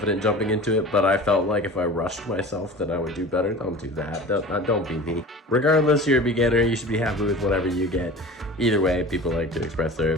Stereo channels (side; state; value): both; normal; correlation 0.38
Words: jumping into it, but I felt like if I rushed myself then I would do better. Don't do that. Don't be me. Regardless, you're a beginner, you should be happy with whatever you get. Either way, people like to express their